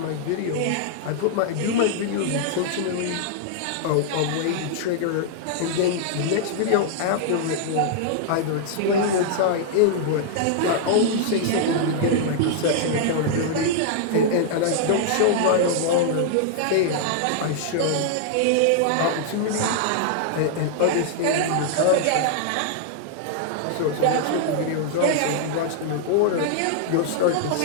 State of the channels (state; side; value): different; both; correlation -0.01